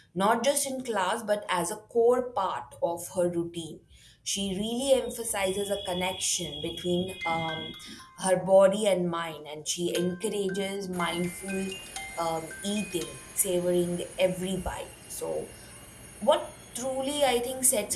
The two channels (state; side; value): identical; both; correlation 1.00